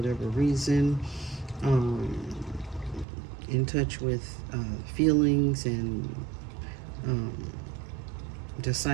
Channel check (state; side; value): drops out; left; at 3.1 s